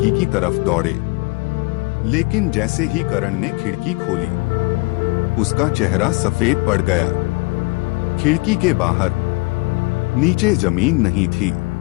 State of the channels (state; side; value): quieter; right; 26.9 dB